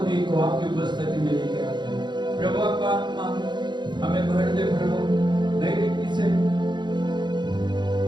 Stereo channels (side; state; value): left; late; 0.22 ms